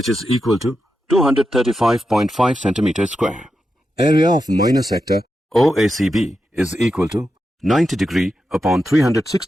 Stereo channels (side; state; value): both; normal; correlation 0.88